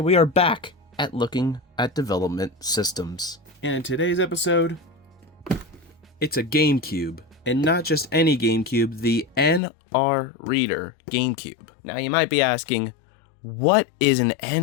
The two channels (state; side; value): drops out; right; at 9.6 s